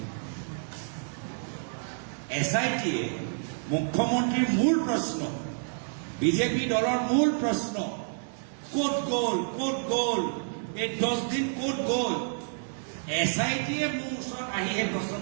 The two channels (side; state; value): left; silent; digital silence